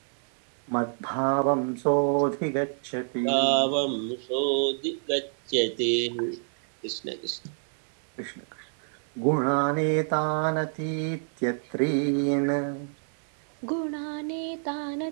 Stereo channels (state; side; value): silent; left; digital silence